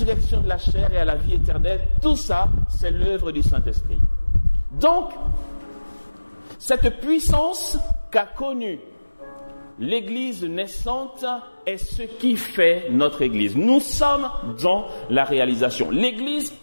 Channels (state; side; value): inverted; both; correlation -1.00